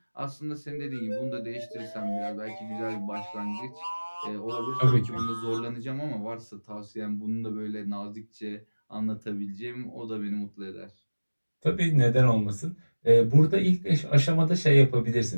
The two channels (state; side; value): inverted; both; correlation -1.00